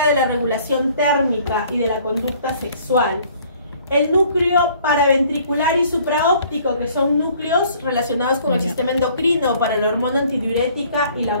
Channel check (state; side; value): inverted; both; correlation -0.57